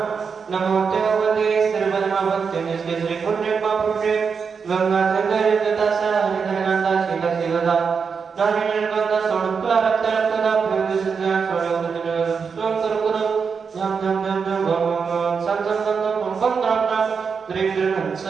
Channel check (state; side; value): quieter; left; 5.8 dB